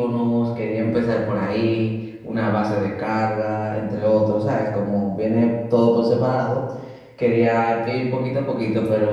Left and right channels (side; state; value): both; identical; correlation 1.00